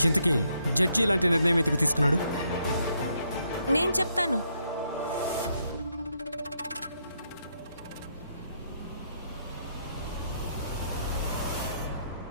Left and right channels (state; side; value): inverted; both; correlation -0.75